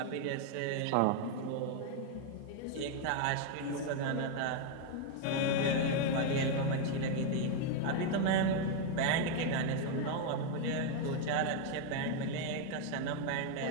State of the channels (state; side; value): different; both; correlation 0.01